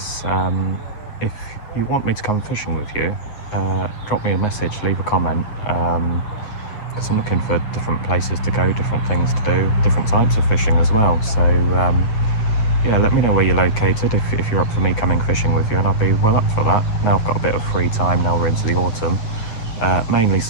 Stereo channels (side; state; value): right; late; 9.5 ms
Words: if you want me to come fishing with you, drop me a message, leave a comment, because I'm looking for different places to go, different things to do, different types of fishing as well. So yeah, let me know where you're located if you're up for me coming fishing with you, and I'll be well up for that. Now I've got a bit of free time, now we're into the autumn. Mainly